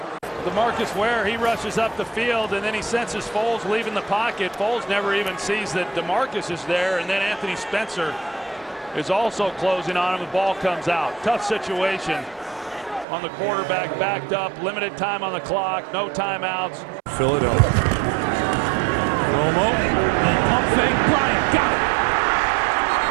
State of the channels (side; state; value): left; drops out; at 13.1 s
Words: DeMarcus Ware, he rushes up the field, and then he senses Foles leaving the pocket. Foles never even sees that DeMarcus is there, and then Anthony Spencer is also closing on him. The ball comes out. Tough situation on the quarterback, backed up, limited time on the clock, no timeouts. Philadelphia. Romo, pump fake, Bryant got it.